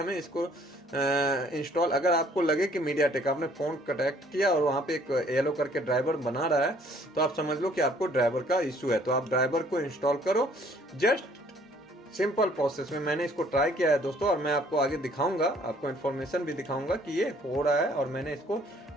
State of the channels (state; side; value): normal; both; correlation 0.60